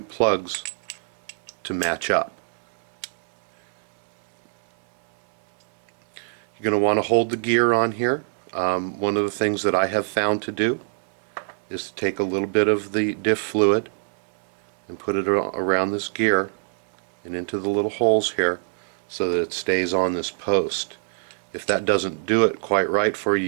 plugs to match up. You're going to want to hold the gear on here. One of the things that I have found to do is to take a little bit of the diff fluid and put it around this gear and into the little holes here so that it stays on this post. If that doesn't do it quite right for you,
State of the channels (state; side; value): silent; left; digital silence